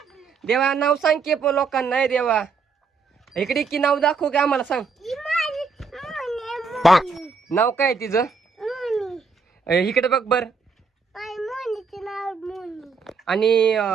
देवा नाव सांग की पण लोकांना नाही देवा इकडे की नाव दाखव की आम्हाला सांग नाव काय तिचं इकडे बघ बर आणि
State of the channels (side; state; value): left; quieter; 4.8 dB